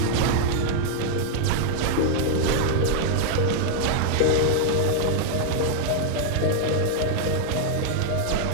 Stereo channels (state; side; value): different; both; correlation 0.00